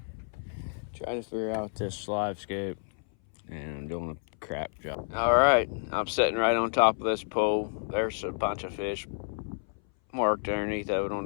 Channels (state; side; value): silent; right; 58 dB below the other